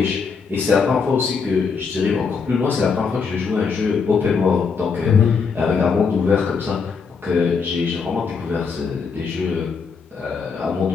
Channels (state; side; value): quieter; right; 5.3 dB